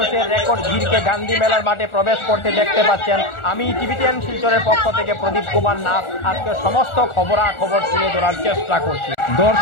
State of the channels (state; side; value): late; right; 1.4 ms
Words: রেকর্ড ভিড়কে গান্ধী মেলার মাঠে প্রবেশ করতে দেখতে পাচ্ছেন। আমি টিভিটিএন শিলচরের পক্ষ থেকে প্রদীপ কুমার নাথ আজকে সমস্ত খবরাখবর তুলে ধরার চেষ্টা করছি।